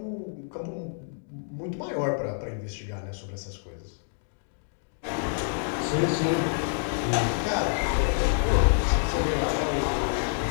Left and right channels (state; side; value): silent; right; digital silence